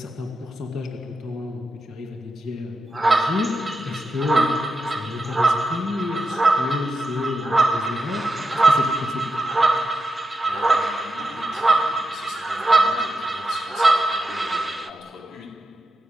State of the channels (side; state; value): both; normal; correlation 0.87